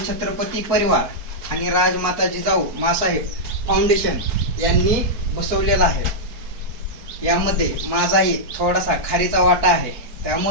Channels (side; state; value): left; late; 4.6 ms